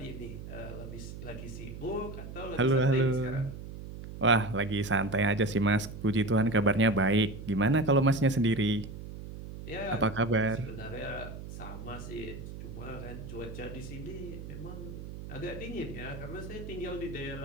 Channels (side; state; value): right; noise; hum, 11 dB below the sound